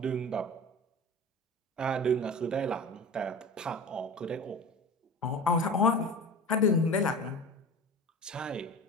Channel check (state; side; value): normal; both; correlation 0.35